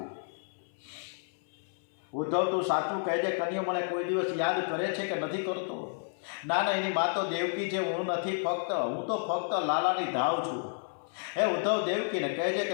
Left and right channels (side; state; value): right; silent; 57 dB below the other